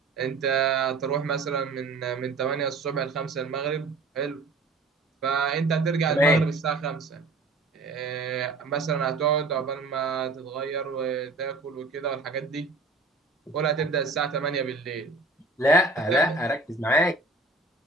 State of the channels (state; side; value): quieter; left; 3.5 dB